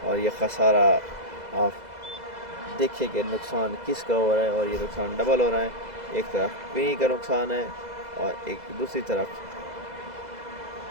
और ये खसारा आप देखिए कि नुकसान किसका हो रहा है, और ये नुकसान डबल हो रहा है, एक तरफ विनी का नुकसान है और एक दूसरी तरफ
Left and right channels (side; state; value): left; late; 2.0 ms